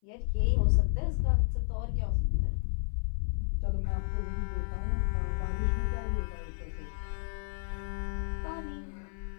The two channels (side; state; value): right; silent; 57 dB below the other